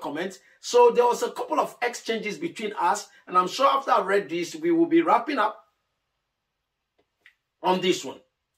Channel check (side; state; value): both; identical; correlation 1.00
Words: So there was a couple of exchanges between us, and I'm sure after I read this, we will be wrapping up on this one.